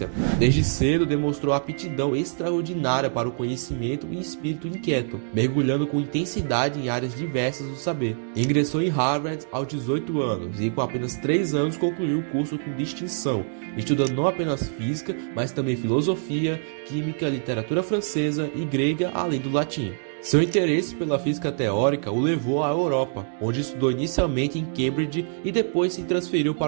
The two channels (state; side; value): silent; left; digital silence